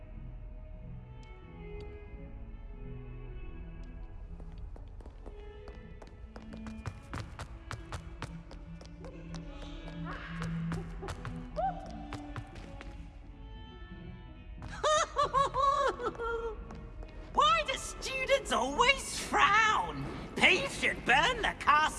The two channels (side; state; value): both; identical; correlation 1.00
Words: Why do students always frown? Peace should burn the